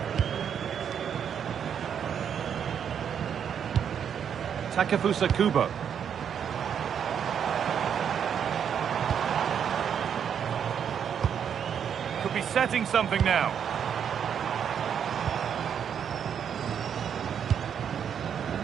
Takefusa Kubo. Could be setting something now.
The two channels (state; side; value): quieter; left; 8.1 dB